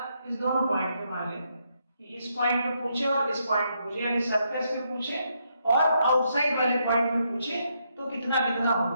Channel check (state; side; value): inverted; both; correlation -0.77